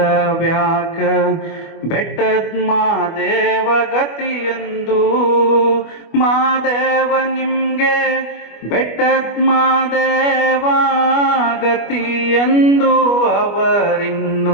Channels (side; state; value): right; late; 25 ms